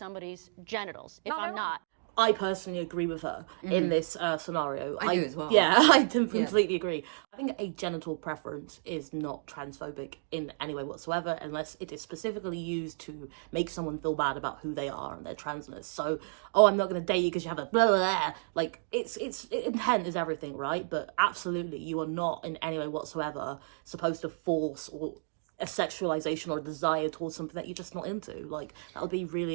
genitals if I'm not. I personally agree with her in this scenario. I do as well. Yeah, I completely agree. I think a genital preference is not transphobic in any way whatsoever unless it is specifically used to make someone feel bad about who they are and their transness. So, I'm not going to date you because you have a blah, blah, blah. Like, it's intent is everything, right? But absolutely, you are not in any way whatsoever supposed to force or a sexualization or a desire towards something that you're just not into. Like, that would be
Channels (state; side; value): silent; left; digital silence